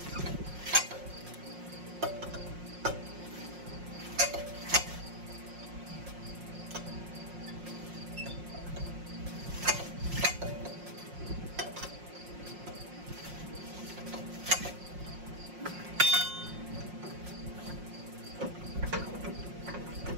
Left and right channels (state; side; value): late; left; 5.6 ms